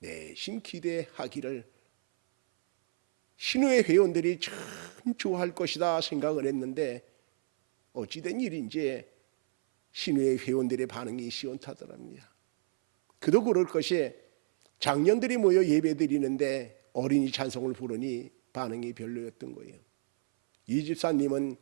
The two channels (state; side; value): silent; left; 58 dB below the other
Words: 기대하기를 신우회 회원들이 참 좋아할 것이다 생각을 했는데 어찌된 일인지 신우의 회원들의 반응이 시원타더랍니다. 그도 그럴 것이 장년들이 모여 예배드리는데 어린이 찬송을 부르니 반응이 별로였던 거예요. 이 집사님은